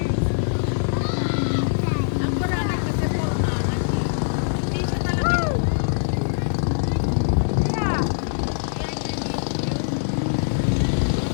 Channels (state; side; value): silent; right; digital silence